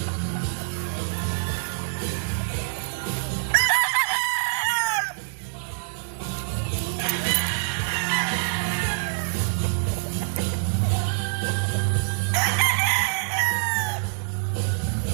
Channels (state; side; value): silent; left; digital silence